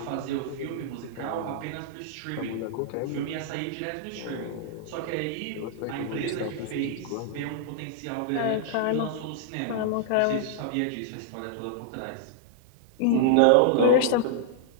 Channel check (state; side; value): different; both; correlation -0.01